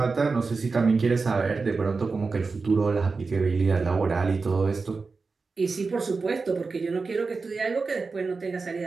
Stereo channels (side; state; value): left; quieter; 4.3 dB